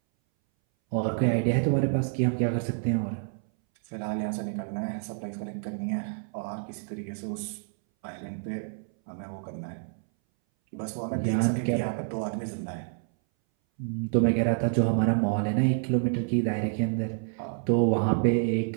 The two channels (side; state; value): left; silent; 59 dB below the other